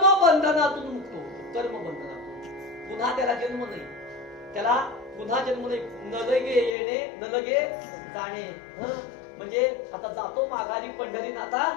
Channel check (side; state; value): right; drops out; at 6.8 s